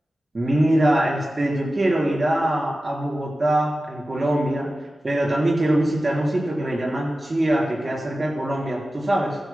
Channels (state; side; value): normal; both; correlation 0.94